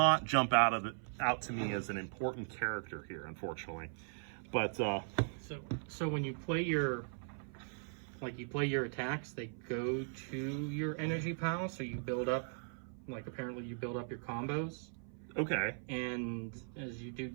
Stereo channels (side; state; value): left; silent; 52 dB below the other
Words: jump out to me as an important character here, unfortunately. But so when you play your attacks, they go to your energy pile, so you build up, apparently you build up your combos. Okay. And as you do